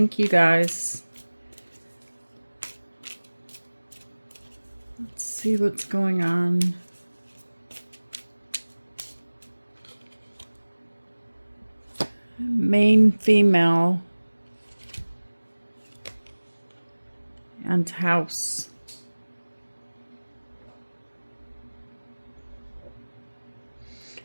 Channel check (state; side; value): inverted; both; correlation -1.00